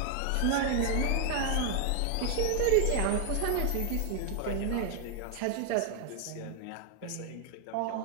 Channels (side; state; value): both; different; correlation 0.00